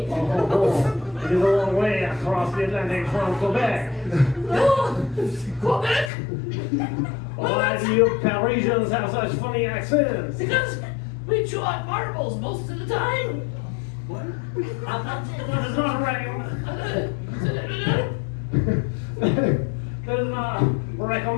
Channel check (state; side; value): drops out; right; at 6.1 s